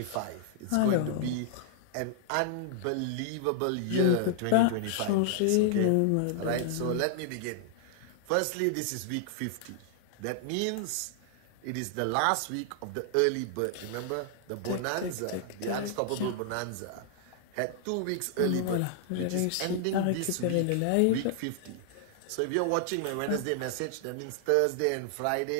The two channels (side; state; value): both; different; correlation -0.01